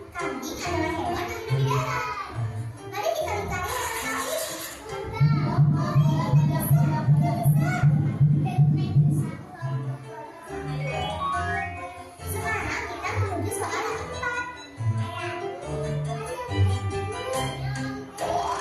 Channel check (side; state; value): both; identical; correlation 1.00